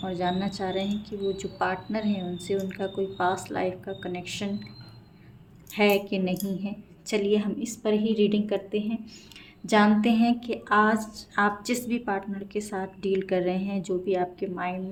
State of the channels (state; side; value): identical; both; correlation 1.00